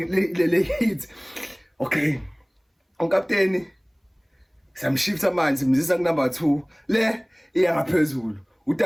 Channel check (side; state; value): both; identical; correlation 1.00